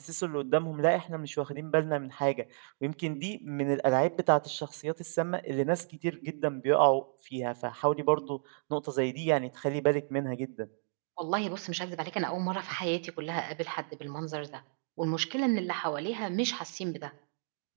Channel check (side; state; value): left; silent; digital silence